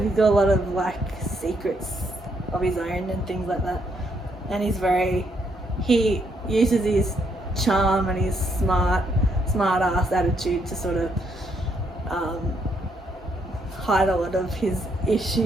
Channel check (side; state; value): both; normal; correlation 0.74